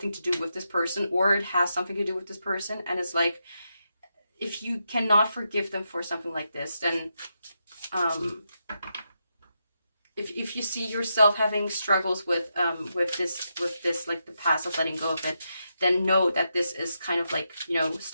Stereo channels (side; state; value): both; inverted; correlation -0.84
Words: to do with this person, or it has something to do with this person. And it's like, if you cannot forgive them for something like this, then if you see yourself having struggles with this, like the past of letting go of it, then know that this is kind of like, you know,